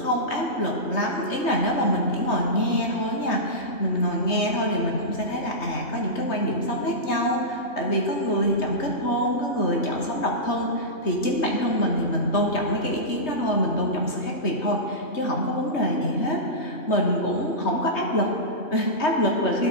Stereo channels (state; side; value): late; right; 3.2 ms